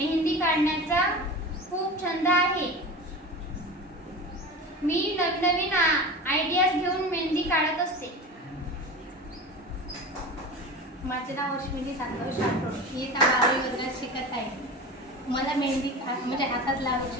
काढण्याचा खूप छंद आहे. मी नवीन आयडियाज घेऊन मेहंदी काढत असते. माझे नाव अश्विनी संतोष राठोड. मी 12वी वर्गात शिकत आहे. मला मेहंदी म्हणजे हातात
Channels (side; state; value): both; normal; correlation 0.31